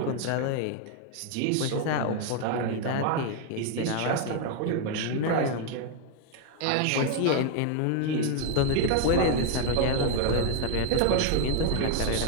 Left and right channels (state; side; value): different; both; correlation 0.01